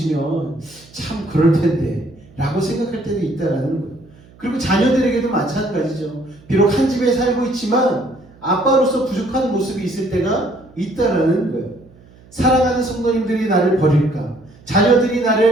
참 그럴 텐데 라고 생각할 때도 있다라는 거예요. 그리고 자녀들에게도 마찬가지죠. 비록 한 집에 살고 있지만 아빠로서 부족한 모습이 있을 때가 있다라는 거예요. 사랑하는 성도님들이 나를 버릴까? 자녀들이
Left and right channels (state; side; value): noise; right; hum, 25 dB below the sound